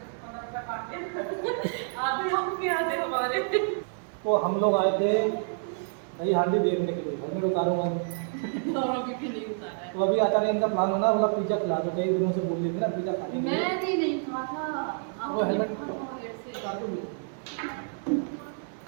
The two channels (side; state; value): left; silent; digital silence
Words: तो हम लोग आए थे दही हांडी देखने के लिए, हेलमेट उतारूंगा तो अभी अचानक इनका प्लान होना, बोला पिज्जा खिला दो। कई दिनों से बोल रही थी ना पिज्जा खाने के लिए। मैं भी नहीं खाता। वो हेलमेट